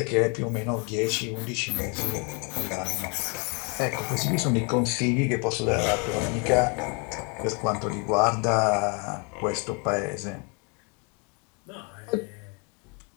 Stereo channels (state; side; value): quieter; right; 34.5 dB